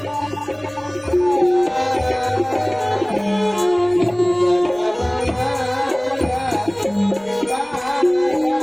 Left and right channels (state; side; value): noise; left; rumble, 29 dB below the sound